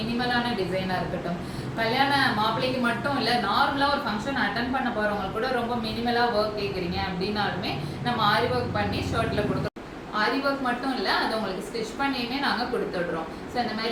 டிசைனாக இருக்கட்டும், கல்யாண மாப்பிள்ளைக்கு மட்டும் இல்லை, நார்மலாக ஒரு ஃபங்க்ஷன் அட்டன் பண்ண போகிறவங்க கூட ரொம்ப மினிமலாக ஒர்க் கேட்குறீங்க அப்படின்னாலுமே நம்ம ஆரி ஒர்க் பண்ணி ஷர்ட்டில் கொடுத்துருவோம். ஆரி ஒர்க் மட்டும் இல்லை, அது உங்களுக்கு ஸ்டிச் பண்ணியுமே நாங்கள் கொடுத்துடுறோம். ஸோ இந்த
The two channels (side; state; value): both; identical; correlation 1.00